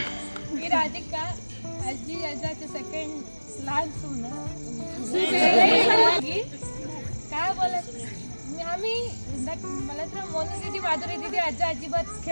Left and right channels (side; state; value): both; inverted; correlation -1.00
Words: मी राधिका आजी आजाचे सेकंड लहान सून काय बोलत आम्ही मला तर मोनू दीदी माधुरी दीदी आजा अजिबात